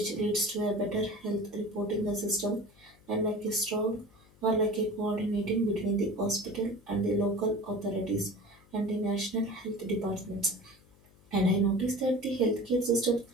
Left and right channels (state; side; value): noise; left; hum, 28 dB below the sound